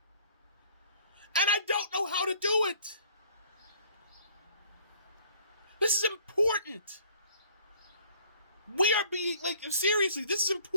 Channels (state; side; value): inverted; both; correlation -0.55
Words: And I don't know how to do it. This is important. We are being, seriously, this is